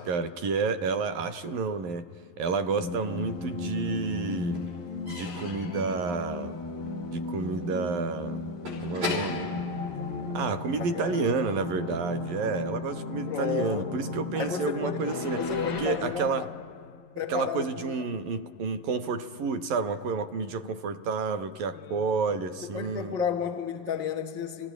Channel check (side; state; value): left; late; 11 ms